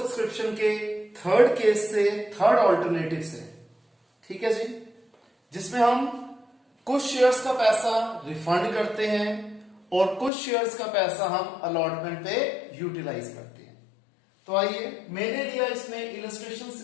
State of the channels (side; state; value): right; drops out; at 10.3 s